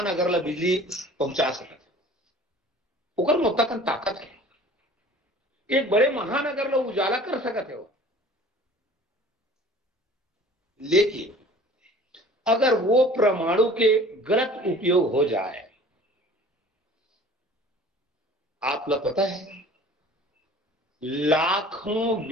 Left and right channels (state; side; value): normal; both; correlation 0.47